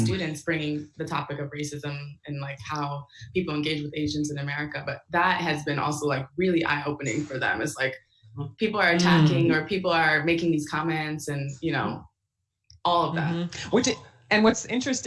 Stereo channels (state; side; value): identical; both; correlation 1.00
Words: bringing the topic of racism and like how people engage with Asians in America. But that has been also like really eye-opening for them. It's like, people are attacking or people are making these comments and, all of that. And what's